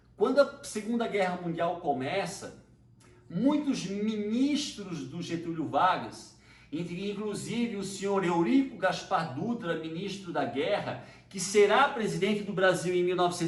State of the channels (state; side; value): identical; both; correlation 1.00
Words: quando a Segunda Guerra Mundial começa, muitos ministros do Getúlio Vargas, inclusive o senhor Eurico Gaspar Dutra, ministro da Guerra, que será presidente do Brasil em